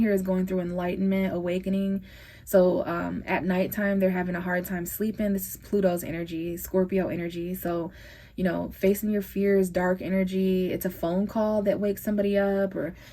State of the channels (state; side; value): identical; both; correlation 1.00